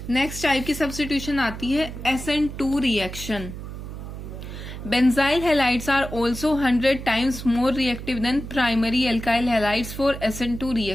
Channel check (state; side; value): noise; right; hum, 10 dB below the sound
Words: नेक्स्ट टाइप की सब्स्टिट्यूशन आती है SN2 reaction. Benzyl halides are also 100 times more reactive than primary alkyl halides for SN2